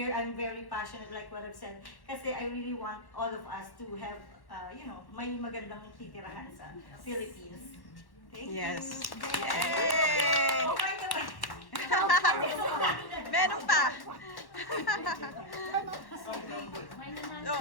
I'm very passionate, like what I've said, kasi I really want all of us to have, may magandang titirahan sa Philippines. Thank Yes. you. Yay! Oh my God! Meron pa.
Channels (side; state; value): right; late; 1.1 ms